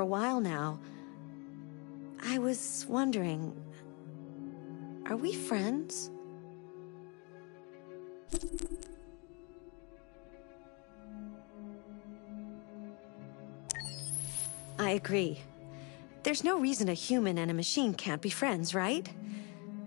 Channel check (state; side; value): quieter; right; 31.8 dB